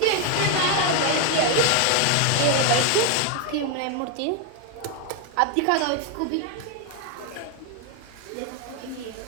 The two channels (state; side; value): different; both; correlation 0.01